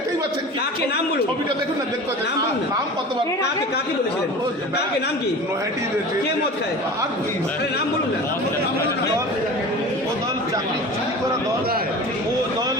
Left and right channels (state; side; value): normal; both; correlation 0.36